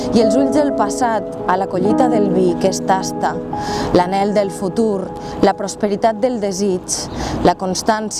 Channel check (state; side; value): identical; both; correlation 1.00